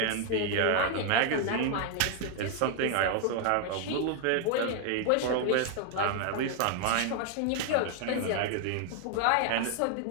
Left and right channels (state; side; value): different; both; correlation 0.00